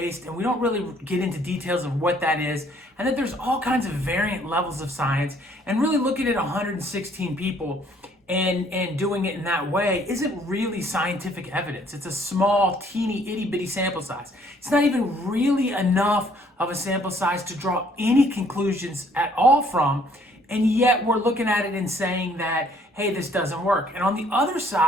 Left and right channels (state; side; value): normal; both; correlation 0.62